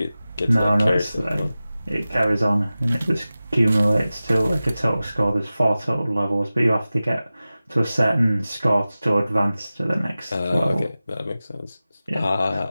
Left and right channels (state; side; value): inverted; both; correlation -0.96